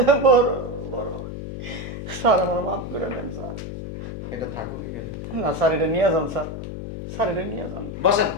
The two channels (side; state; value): left; noise; hum, 8 dB below the sound